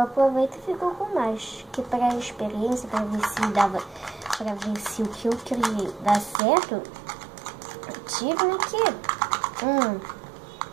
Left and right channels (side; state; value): left; drops out; at 6.4 s